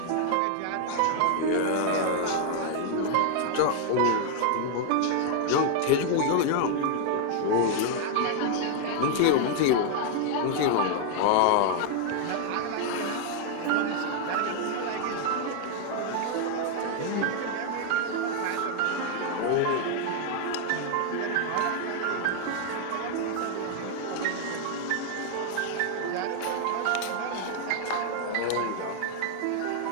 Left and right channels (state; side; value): different; both; correlation 0.00